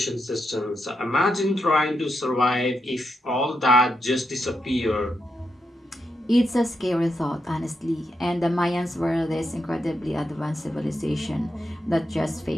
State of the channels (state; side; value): normal; both; correlation 0.84